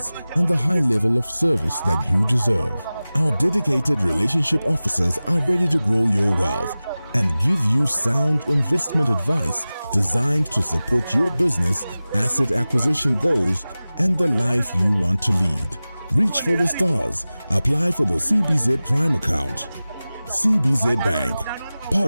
and the high level of service that you deserve. Our dedicated relationship officers are ready to grow your wealth and give you sound investment advice designed to support your business, asset acquisition goals, and the life you want to lead. Reach for the stars. Apply for the CBZ Prime account. CBZ Bank,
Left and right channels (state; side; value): inverted; both; correlation -0.97